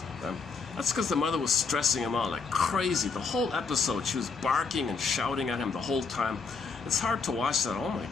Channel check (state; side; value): quieter; right; 4.8 dB